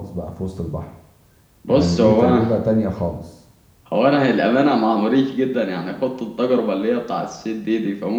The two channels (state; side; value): identical; both; correlation 1.00